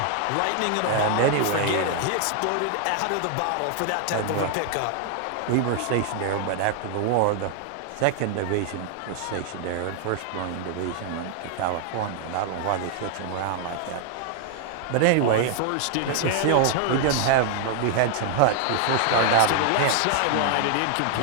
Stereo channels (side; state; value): both; different; correlation 0.00